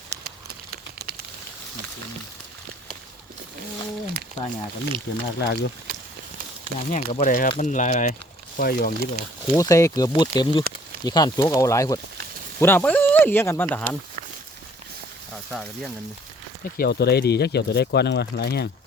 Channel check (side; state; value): both; normal; correlation 0.57